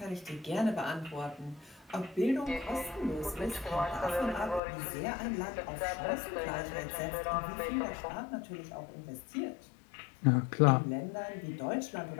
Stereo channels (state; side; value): drops out; right; at 4.6 s